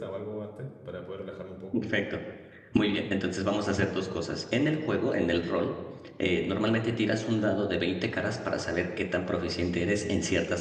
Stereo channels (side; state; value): both; identical; correlation 1.00